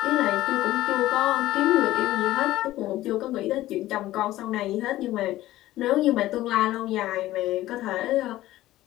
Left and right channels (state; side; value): quieter; right; 15.6 dB